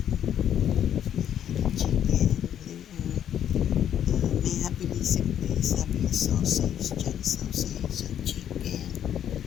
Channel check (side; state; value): right; quieter; 9.9 dB